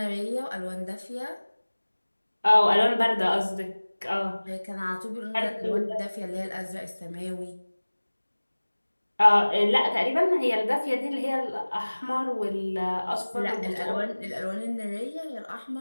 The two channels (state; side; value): inverted; both; correlation -1.00